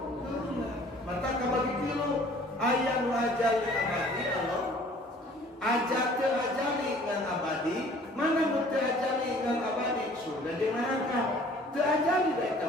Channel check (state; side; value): normal; both; correlation 0.53